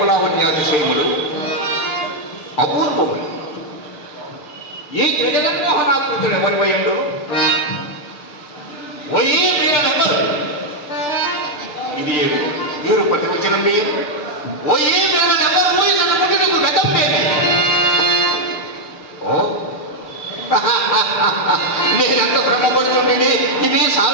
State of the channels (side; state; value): right; late; 6.7 ms